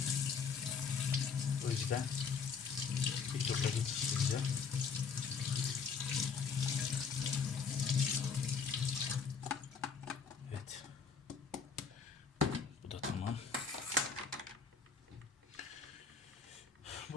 O yüzden bir tur daha geçireceğim. Evet.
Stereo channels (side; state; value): right; quieter; 5.8 dB